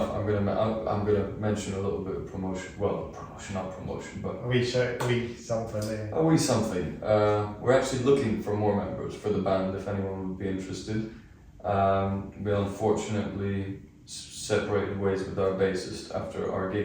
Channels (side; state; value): both; identical; correlation 1.00